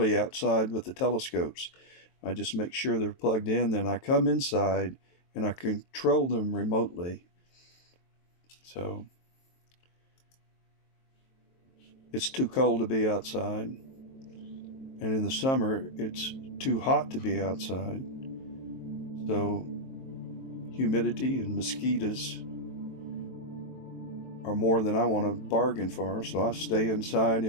outside with the telescopes. I just make sure they're plugged in, then I come inside and I control them remotely. So it's too cold to be outside, and in the summer it's too hot to be outside. So humidity and mosquitoes are more than I want to bargain for, so I stay inside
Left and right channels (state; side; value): late; right; 23 ms